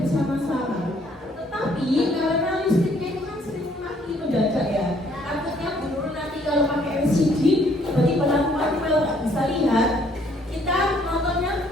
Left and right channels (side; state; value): both; normal; correlation 0.64